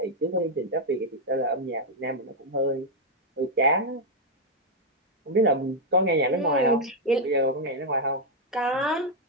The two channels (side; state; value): both; normal; correlation 0.00